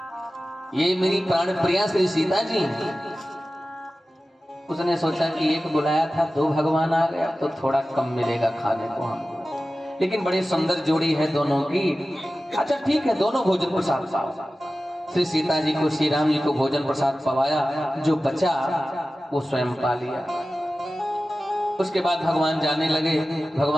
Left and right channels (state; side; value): normal; both; correlation 0.95